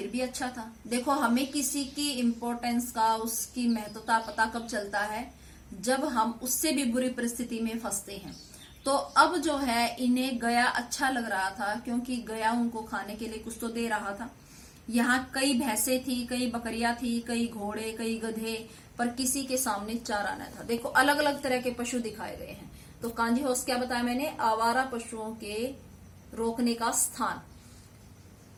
भी अच्छा था। देखो, हमें किसी की इम्पोर्टेंस का, उसकी महत्वता पता कब चलता है, जब हम उससे भी बुरी परिस्थिति में फंसते हैं। तो अब जो है इन्हें गया अच्छा लग रहा था, क्योंकि गया उनको खाने के लिए कुछ तो दे रहा था। यहाँ कई भैंसे थी, कई बकरियां थी, कई घोड़े, कई गधे, पर किसी के सामने चारा न था। देखो, अलग अलग तरह के पशु दिखाए गए हैं। तो कांजी हाउस क्या बताया मैंने? आवारा पशुओं के रोकने का स्थान।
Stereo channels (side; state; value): both; identical; correlation 1.00